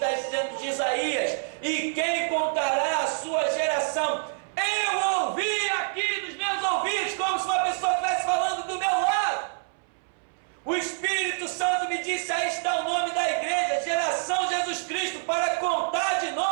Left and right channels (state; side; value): silent; left; 59 dB below the other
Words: dizendo de Isaías: e quem contará a sua geração? Eu ouvi aqui nos meus ouvidos, como se uma pessoa estivesse falando do meu lado. O Espírito Santo me disse: aí está o nome da igreja, Geração Jesus Cristo, para contar de